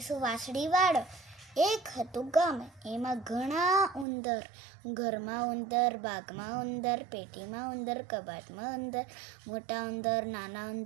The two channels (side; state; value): left; drops out; at 4.0 s